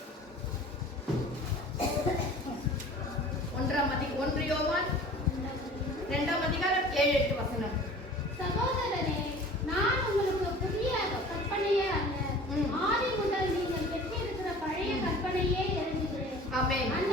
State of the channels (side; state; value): both; normal; correlation 0.44